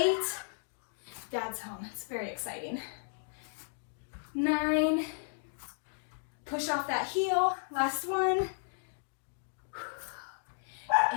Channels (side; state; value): right; silent; digital silence